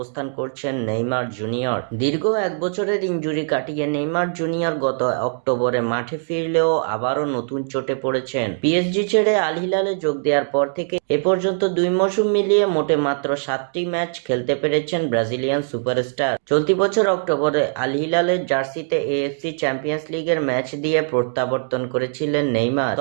করছেন নেইমার জুনিয়র। দীর্ঘ 1 বছরের ইনজুরি কাটিয়ে নেইমার জুনিয়র গত অক্টোবরে মাঠে ফিরলেও আবারও নতুন চোটে পড়েছেন। পিএসজি ছেড়ে আল হিলালে যোগ দেওয়ার পর থেকে এ পর্যন্ত 2 মৌসুম মিলিয়ে মোটে মাত্র 7টি ম্যাচ খেলতে পেরেছেন ব্রাজিলিয়ান সুপারস্টার। চলতি বছর অক্টোবরে আল হিলালের জার্সিতে এএফসি চ্যাম্পিয়ন্স লিগের ম্যাচ দিয়ে প্রত্যাবর্তন করেছিলেন নেইমার।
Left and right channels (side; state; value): left; silent; digital silence